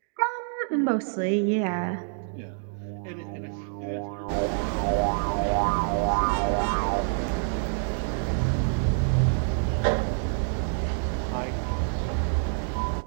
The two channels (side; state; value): left; silent; 60 dB below the other